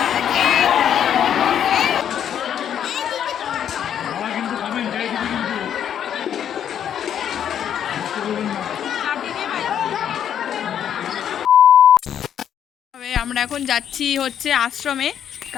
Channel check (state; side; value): quieter; right; 9.3 dB